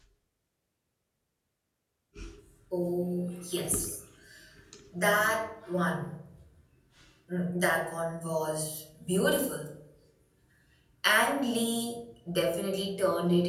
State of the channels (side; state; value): both; identical; correlation 1.00